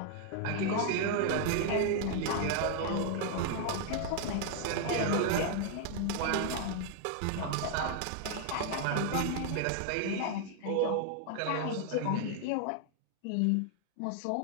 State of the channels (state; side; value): different; both; correlation 0.00